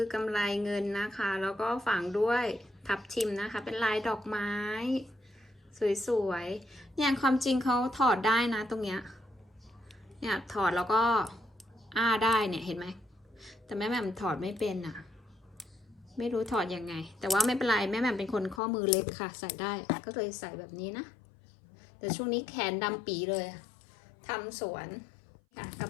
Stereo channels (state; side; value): drops out; right; at 18.6 s